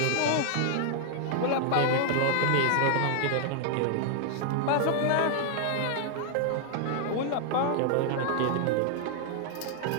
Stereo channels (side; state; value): both; different; correlation 0.00